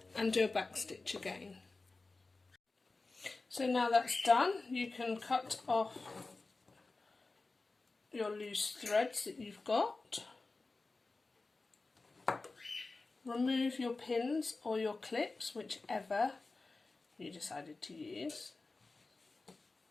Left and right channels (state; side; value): quieter; right; 3.6 dB